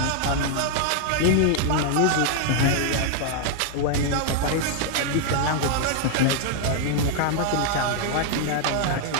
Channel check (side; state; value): both; different; correlation 0.00